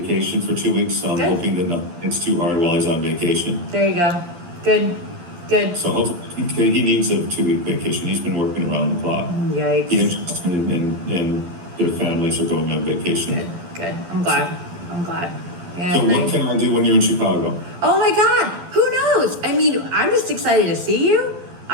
for 2 weeks, so I'm Good. hoping that it's too hard while he's on vacation. There you go. Good. So hopefully he needs a 2-week vacation. He's been working around the clock. Yikes. He interested in their families are going on vacation. Good. I'm glad. Yeah. So what can I do when you're in Chicago? Oh my God. Who knows? I mean, I'm just excited to see you.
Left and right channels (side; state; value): left; late; 11 ms